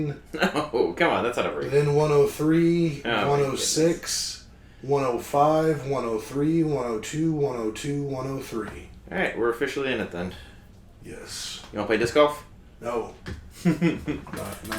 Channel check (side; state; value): both; identical; correlation 1.00